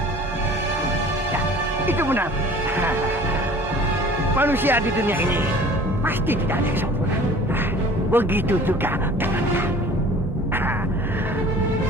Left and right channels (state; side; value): normal; both; correlation 0.46